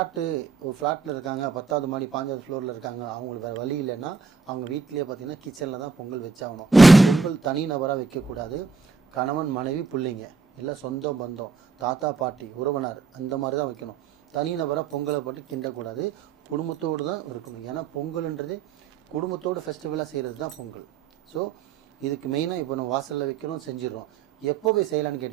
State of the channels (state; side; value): quieter; left; 4.8 dB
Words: ஒரு ஃப்ளாட்டில் இருக்காங்க, 10வது மாடி 5வது ஃப்ளோரில் இருக்காங்க, அவங்களுக்கு வேறு வழி இல்லைன்னா அவங்க வீட்லேயே பார்த்தீங்கன்னா கிச்சனில் தான் பொங்கல் வச்சாகணும். பொங்கல் தனி நபராக வைக்கக்கூடாது. கணவன் மனைவி பிள்ளைங்க இல்லை சொந்த பந்தம் தாத்தா பாட்டி உறவினர் அந்த மாதிரி தான் வைக்கணும். தனி நபராக பொங்கலை போட்டு கிண்டக்கூடாது. குடும்பத்தோடு தான் இருக்கணும். ஏன்னா பொங்கல்ன்றது குடும்பத்தோடு ஃபெஸ்டிவலாக செய்கிறது தான் பொங்கல். ஸோ இதுக்கு மெயினாக இப்போ நம்ம வாசலில் வைக்கிறோம், செஞ்சிடறோம். எப்போ போய் செய்யலான்னு